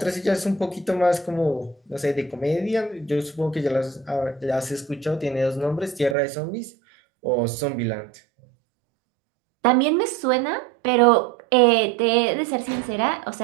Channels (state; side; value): drops out; left; at 6.2 s